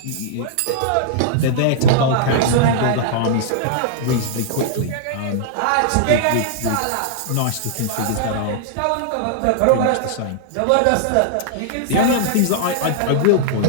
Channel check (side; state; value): both; different; correlation -0.01